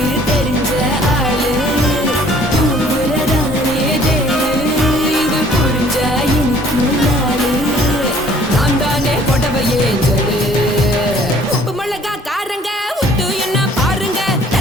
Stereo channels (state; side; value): normal; both; correlation 0.57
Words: தெரிஞ்ச ஆளு தூங்குறதானே தேனு இது புரிஞ்ச எனக்கு நாளு நான் தானே கொடவையே ஏஞ்சலு உப்பு மிளகா காரங்க உத்து என்ன பாருங்க